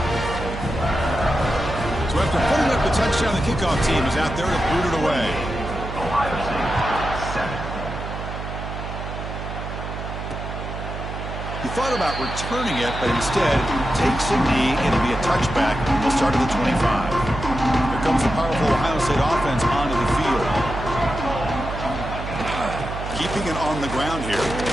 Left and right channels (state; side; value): noise; right; hum, 7 dB below the sound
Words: So after putting up the touchdown, the kickoff team is out there to boot it away. He thought about returning it, but instead takes a knee. It'll be a touchback. He'll start at the 25. Here comes the powerful Ohio State offense onto the field. Keeping it on the ground here.